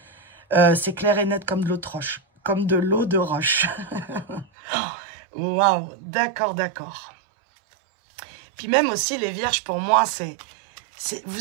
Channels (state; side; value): drops out; left; at 4.5 s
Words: C'est clair et net comme de l'eau de roche. Comme de l'eau de roche. Waouh, d'accord, d'accord. Puis même aussi, les vierges, pour moi,